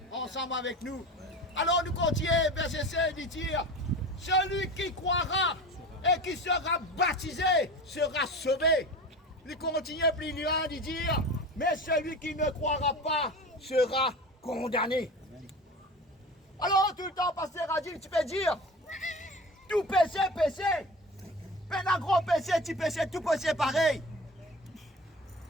ensemble avec nous. Alors nous continuons, verset 7, il dit, celui qui croira et qui sera baptisé sera sauvé. Il continue plus loin de dire, mais celui qui ne croira pas sera condamné. Alors tout le temps, pasteur a dit, tu peux dire, tout péché, péché. Mais un gros péché, petit péché, tout péché pareil.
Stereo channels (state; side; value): normal; both; correlation 0.34